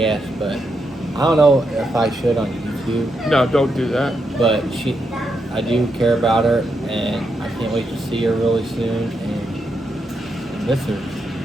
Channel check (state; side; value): normal; both; correlation 0.82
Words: but I don't know if I should on YouTube. No, don't do that. But I do care about her, and I can't wait to see her really soon, and miss her.